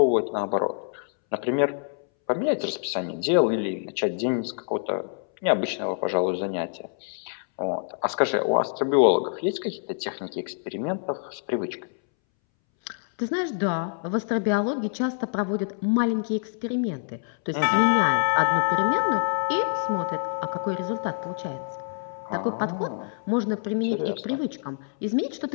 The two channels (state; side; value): silent; right; 61 dB below the other